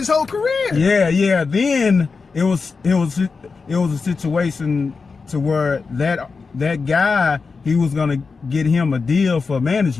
whole career. Yeah. Then it was a situation to where that guy, he was gonna get him a deal for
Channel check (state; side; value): quieter; right; 4.7 dB